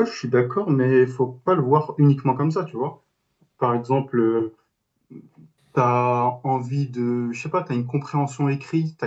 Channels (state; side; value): identical; both; correlation 1.00